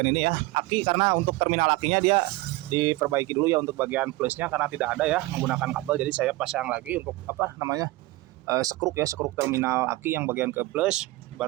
ini ya, aki, karena untuk terminal akinya dia diperbaiki dulu ya untuk bagian plusnya karena tidak ada ya menggunakan kabel. Jadi saya pasang lagi untuk apa namanya sekruk ya, sekruk terminal aki yang bagian ke plus,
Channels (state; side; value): quieter; left; 19.8 dB